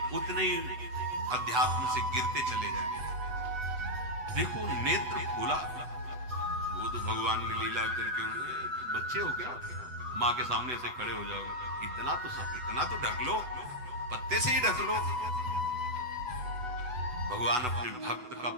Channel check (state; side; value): late; left; 8.0 ms